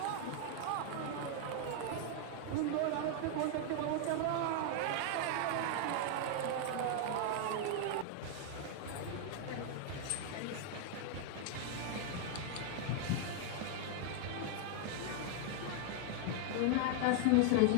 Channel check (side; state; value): both; different; correlation 0.00